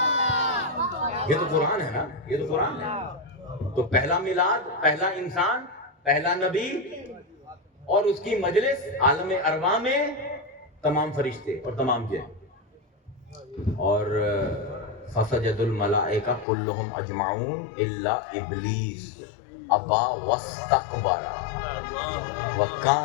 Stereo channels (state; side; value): drops out; right; at 16.4 s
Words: یہ تو قرآن ہے نا، یہ تو قرآن ہے۔ تو پہلا میلاد، پہلا انسان، پہلا نبی، اور اس کی مجلس عالم ارواح میں تمام فرشتے اور تمام جن۔ اور فسجد الملائکہ کلہم اجمعون الا ابلیس ابا واستکبر